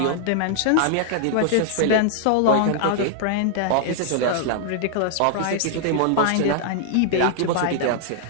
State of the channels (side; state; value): both; different; correlation 0.00